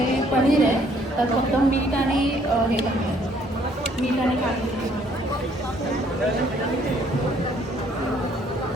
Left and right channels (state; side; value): normal; both; correlation 0.63